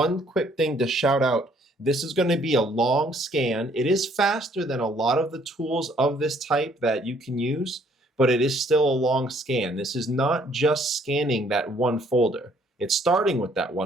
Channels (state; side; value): normal; both; correlation 0.63